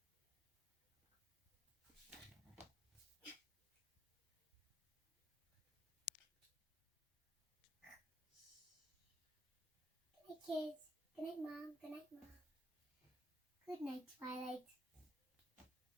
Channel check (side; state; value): both; normal; correlation 0.76